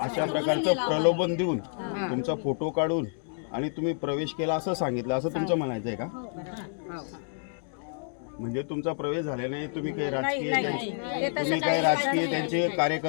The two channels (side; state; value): right; silent; digital silence